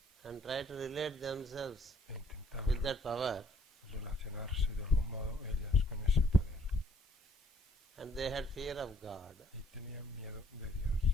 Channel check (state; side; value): normal; both; correlation 0.63